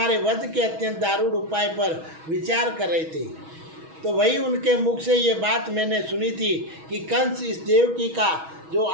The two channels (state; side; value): late; left; 6.2 ms